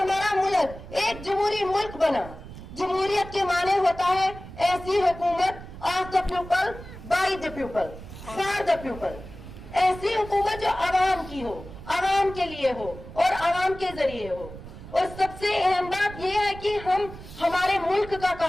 मुल्क एक जमहूरी मुल्क बना। जमहूरियत के माने होता है ऐसी हुकूमत of the people, by the people, for the people. ऐसी हुकूमत जो आवाम की हो, आवाम के लिए हो और आवाम के जरिए हो। और सबसे अहम बात यह है कि हम हमारे मुल्क का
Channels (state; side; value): noise; right; rumble, 14 dB below the sound